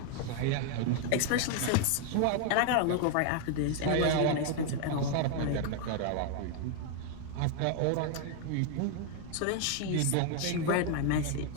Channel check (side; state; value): both; different; correlation 0.00